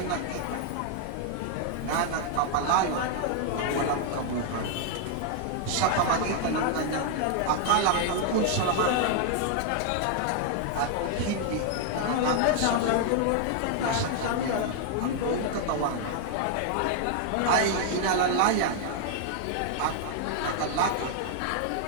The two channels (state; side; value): different; both; correlation 0.00